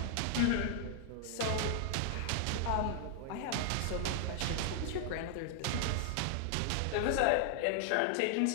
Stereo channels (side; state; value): both; different; correlation 0.00